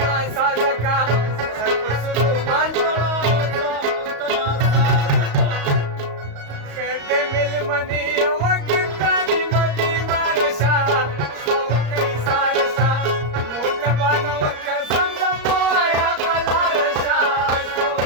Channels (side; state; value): left; late; 35 ms